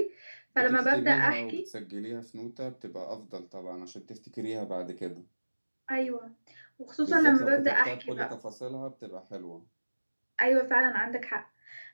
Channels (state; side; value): inverted; both; correlation -1.00